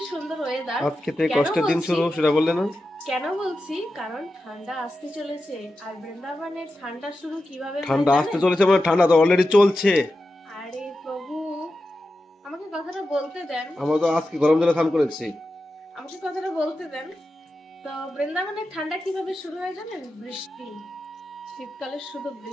সুন্দর ওয়েদার। আজকে থেকে কেন কষ্টের দিন বলছি শুরু, সেটা বললে না? কেন বলছি কারণ ঠান্ডা আসতে চলেছে। আর বৃন্দাবনের ঠান্ডা শুরু কিভাবে হয় ঠান্ডা আসতে জানেন? চলেছে মানে ঠান্ডা তো অলরেডি চলছে। আরে প্রভু, আমাকে কথাটা বলতে দেন। আমরা তো আজকে গরম জলে স্নান করেছি। আমাকে কথাটা বলতে দেন। তো বৃন্দাবনের ঠান্ডা কিভাবে শুরু হয় জানেন? বৃষ্টি। শীতকালে শুধু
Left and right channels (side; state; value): both; normal; correlation 0.91